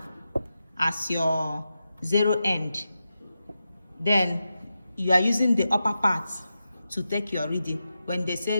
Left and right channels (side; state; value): both; inverted; correlation -0.90